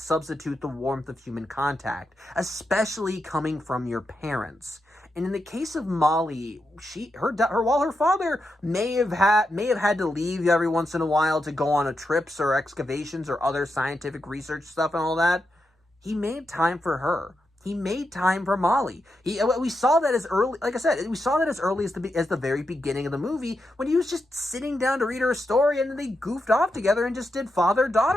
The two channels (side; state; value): both; normal; correlation 0.86